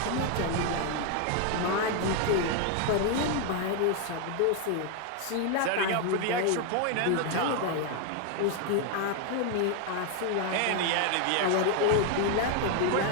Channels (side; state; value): both; different; correlation 0.01